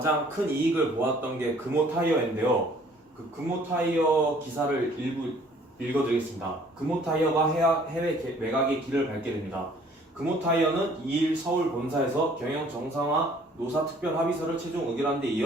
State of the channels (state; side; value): normal; both; correlation 0.57